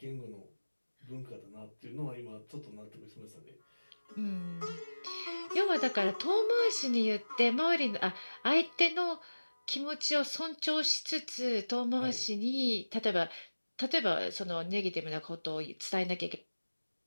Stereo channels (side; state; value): both; inverted; correlation -1.00